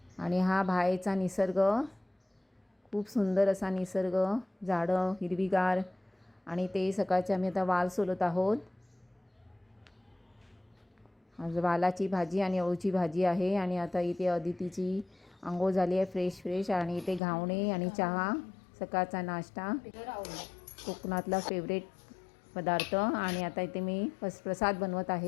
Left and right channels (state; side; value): drops out; right; at 17.2 s